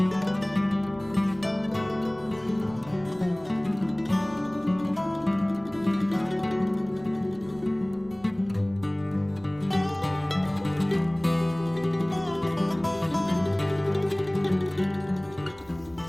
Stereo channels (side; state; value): right; noise; rumble, 24 dB below the sound